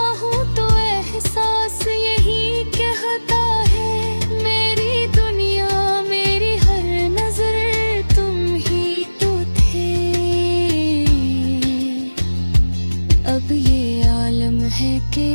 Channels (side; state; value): both; inverted; correlation -1.00